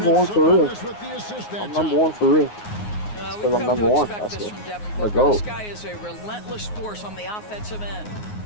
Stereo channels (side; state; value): right; late; 9.6 ms